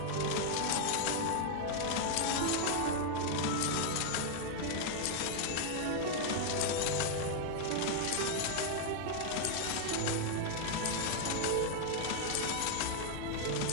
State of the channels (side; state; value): both; different; correlation 0.00